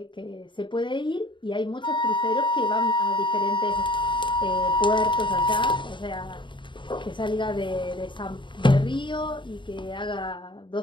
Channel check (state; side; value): late; right; 0.23 ms